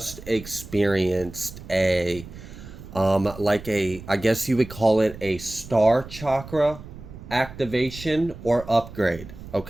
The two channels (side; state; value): right; noise; rumble, 15 dB below the sound